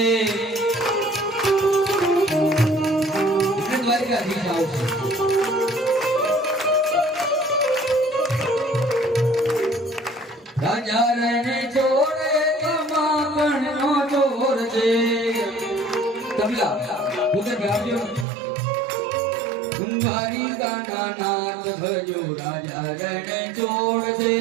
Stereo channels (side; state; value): left; drops out; at 18.2 s